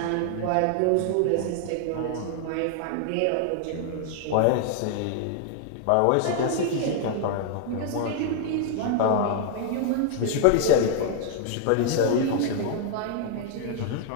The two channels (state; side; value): different; both; correlation 0.00